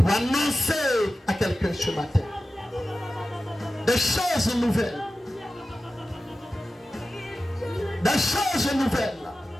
annoncer à quelqu'un ce matin. Des choses nouvelles. Des choses nouvelles.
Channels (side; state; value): both; normal; correlation 0.94